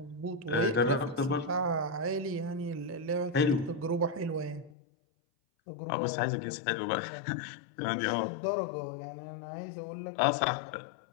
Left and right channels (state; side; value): drops out; right; at 4.7 s